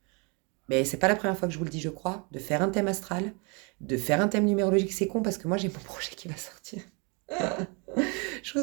mais c'est pas la première fois que je vous le dis, je crois, de faire un thème astral, de faire un thème numérologique. C'est con parce que moi, j'ai mon projet qui va sortir. Je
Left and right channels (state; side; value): quieter; left; 32.4 dB